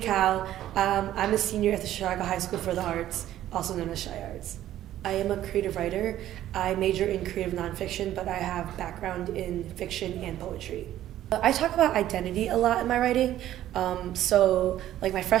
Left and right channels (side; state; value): left; quieter; 12.8 dB